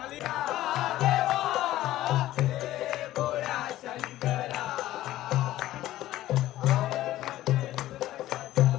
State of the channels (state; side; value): quieter; right; 14.9 dB